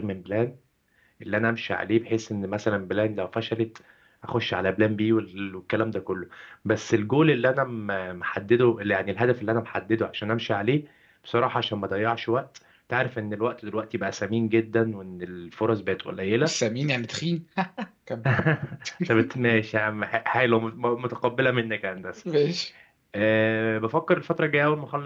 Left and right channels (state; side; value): identical; both; correlation 1.00